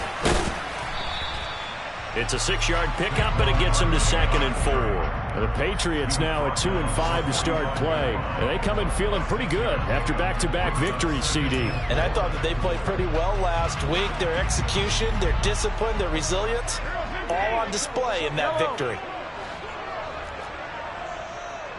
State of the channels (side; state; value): both; identical; correlation 1.00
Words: It's a 6-yard pickup, and it gets him to 2nd and 4. The Patriots now at 2-5 to start play. And they come in feeling pretty good after back-to-back victories, CD. And I thought that they played pretty well last week. Their execution, their discipline, their resilience, all on display in that victory.